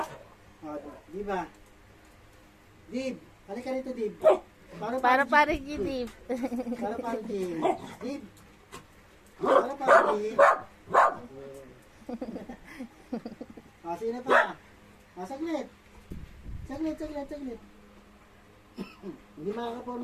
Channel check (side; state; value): both; identical; correlation 1.00